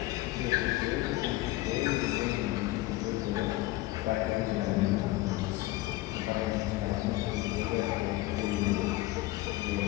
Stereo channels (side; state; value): right; quieter; 18.2 dB